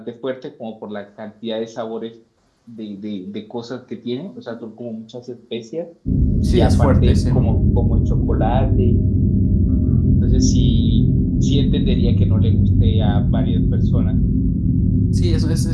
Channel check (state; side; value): identical; both; correlation 1.00